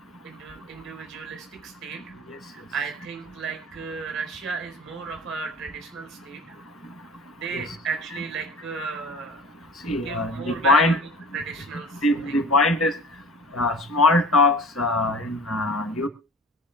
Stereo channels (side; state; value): both; normal; correlation 0.39